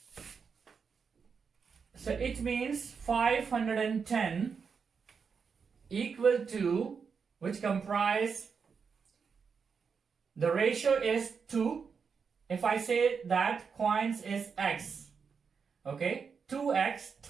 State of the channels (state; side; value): quieter; left; 5.9 dB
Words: So it means 510 equal to, which comprise, the ratio is 2. If I say that coins is x, okay, 2x